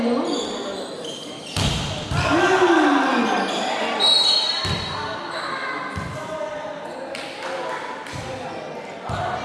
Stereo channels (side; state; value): both; identical; correlation 1.00